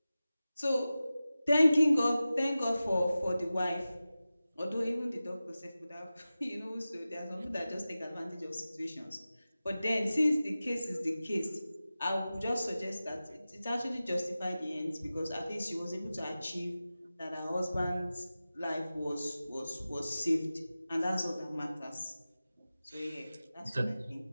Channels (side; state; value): both; inverted; correlation -0.95